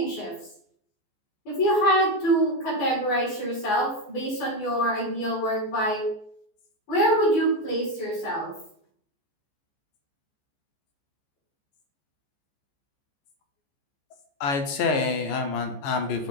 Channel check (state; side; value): late; right; 14 ms